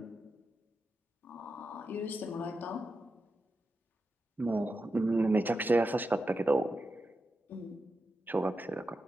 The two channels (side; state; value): both; normal; correlation 0.89